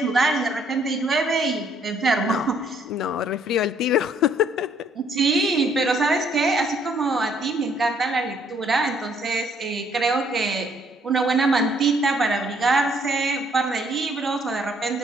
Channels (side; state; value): both; normal; correlation 0.66